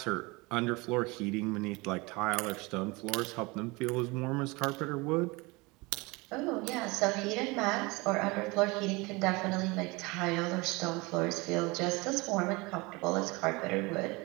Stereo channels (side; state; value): left; quieter; 24.9 dB